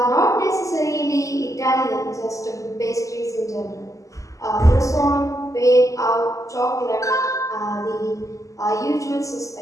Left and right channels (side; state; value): right; late; 0.16 ms